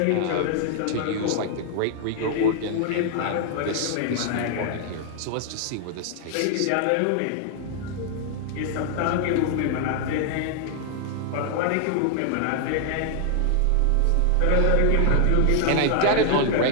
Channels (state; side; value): different; both; correlation 0.00